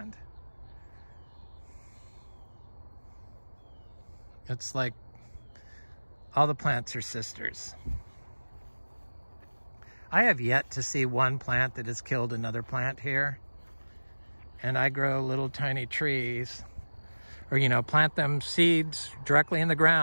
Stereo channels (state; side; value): inverted; both; correlation -1.00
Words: It's like all the plants are sisters. I have yet to see one plant that has killed another plant here. And I grow little tiny trees, or, you know, plant them seeds directly in the